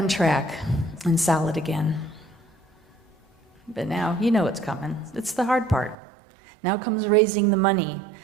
track and solid again. But now, you know what's coming. It's the hard part. Now comes raising the money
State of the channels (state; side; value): drops out; left; at 6.0 s